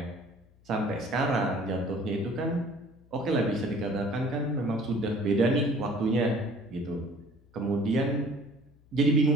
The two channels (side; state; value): left; noise; hum, 28 dB below the sound